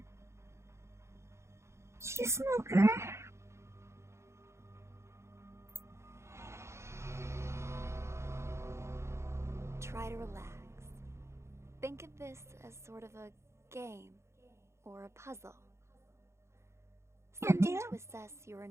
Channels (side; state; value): left; late; 0.13 ms